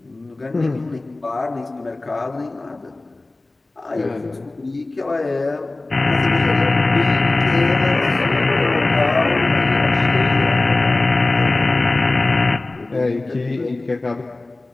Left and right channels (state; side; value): quieter; right; 3.0 dB